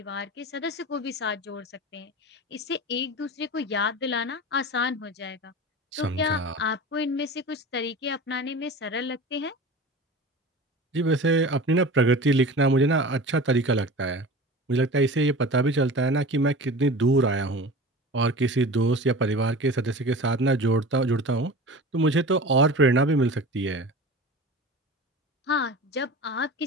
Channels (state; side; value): normal; both; correlation 0.35